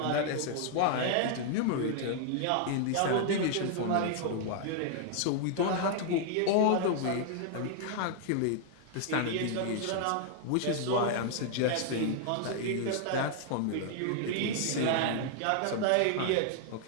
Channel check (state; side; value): different; both; correlation 0.00